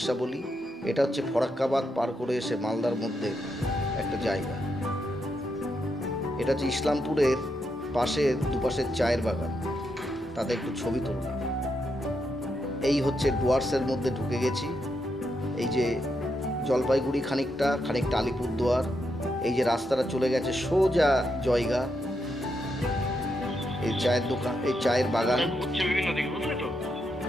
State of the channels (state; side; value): normal; both; correlation 0.82